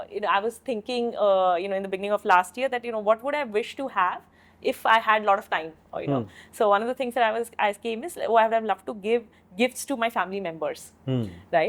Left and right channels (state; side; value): identical; both; correlation 1.00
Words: was thinking, in the beginning of last year that, what would I wish to have if I had a lot of time, or, So one of the things that I came is, I would have loved to give gifts to my family members,